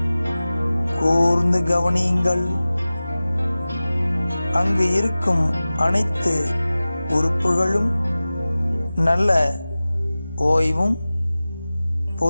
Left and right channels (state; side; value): inverted; both; correlation -0.97